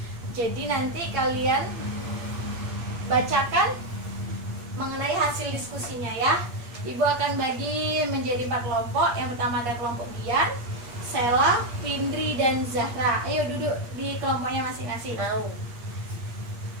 Jadi nanti kalian bacakan mengenai hasil diskusinya ya. Ibu akan bagi menjadi 4 kelompok. Yang pertama ada kelompok Dian, Sela, Pindri, dan Zahra. Ayo duduk di kelompoknya masing-masing. Mau.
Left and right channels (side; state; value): left; late; 8.5 ms